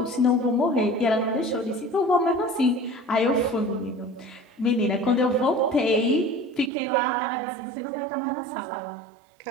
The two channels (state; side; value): drops out; left; at 6.7 s